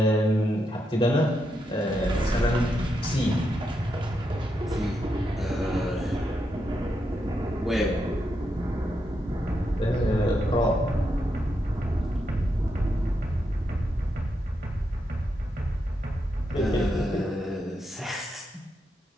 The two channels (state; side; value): normal; both; correlation 0.83